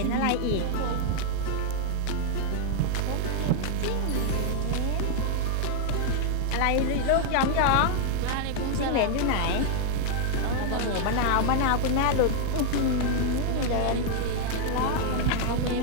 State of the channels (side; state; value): both; different; correlation -0.01